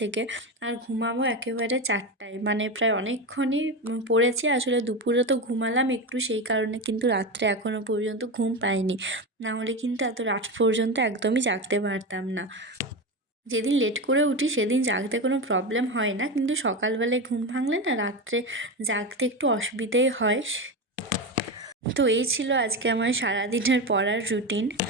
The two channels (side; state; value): both; normal; correlation 0.19